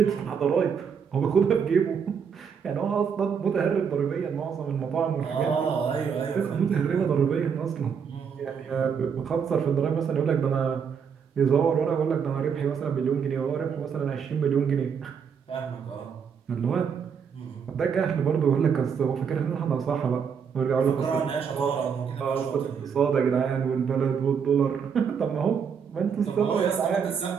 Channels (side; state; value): left; quieter; 6.8 dB